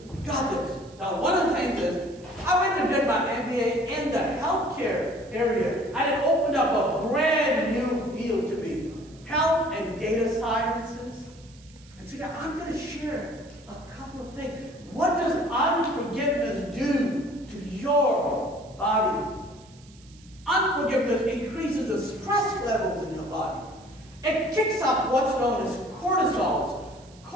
we got this. Now, one of the things is, I went and did my MBA in the healthcare area, and it opened up a brand new field to me, health and data sciences. And so now I'm going to share a couple of things. What does unforgiveness do to your body? Unforgiveness increases the stress levels in your body. It kicks up what's known as cortisol.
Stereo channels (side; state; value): right; noise; hiss, 26 dB below the sound